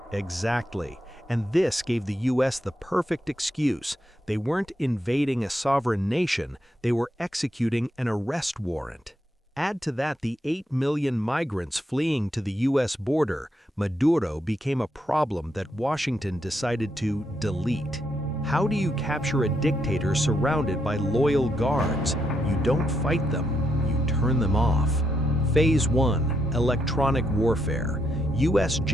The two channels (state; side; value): normal; both; correlation 0.79